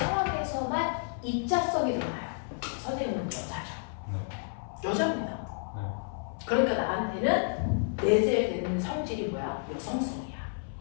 입자성이 드러나요. 선생님은 여자죠. 여자입니다. 그러니까 나한테는 내재되는 성질이 뭐야? 여성성이야.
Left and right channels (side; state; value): right; silent; 57 dB below the other